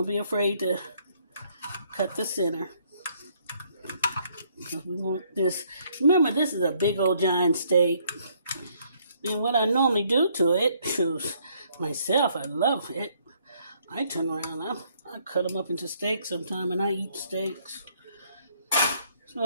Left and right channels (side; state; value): both; inverted; correlation -0.67